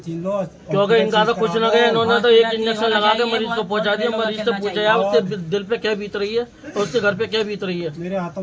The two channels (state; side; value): identical; both; correlation 1.00